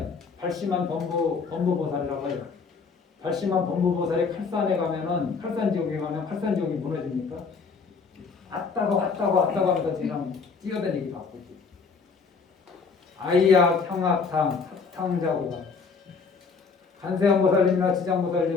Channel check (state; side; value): quieter; right; 5.1 dB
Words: 발심한 범부보살이라고 해요. 발심한 범부보살이 칼산에 가면은 칼산 지역에 가면 칼산 지역이 무너집니까? 왔다가 하면서 그냥 뛰어다니기 바쁘지. 아이약, 형악탕, 합탕자고가. 간세음보살님이나